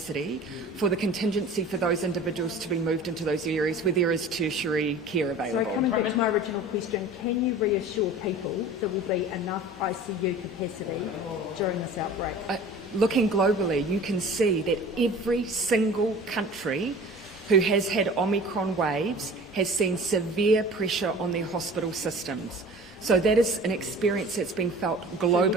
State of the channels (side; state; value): both; normal; correlation 0.42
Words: for the contingency for those individuals to be moved into those areas where there is tertiary care available. So coming back to my original question, can you reassure people there will be enough ICU capacity during this outbreak? Looking globally, you can see that every single country who has had Omicron waves has seen severe pressure on their hospital systems. So that is an experience that's being felt